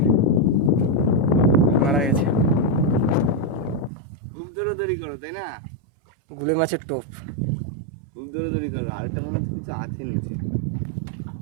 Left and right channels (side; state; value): left; drops out; at 3.9 s